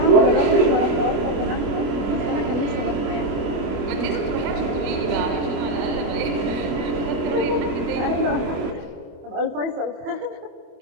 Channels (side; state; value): left; late; 25 ms